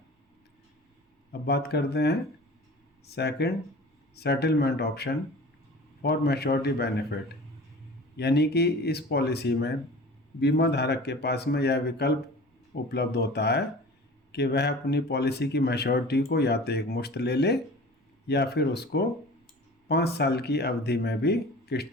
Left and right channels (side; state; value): both; normal; correlation 0.40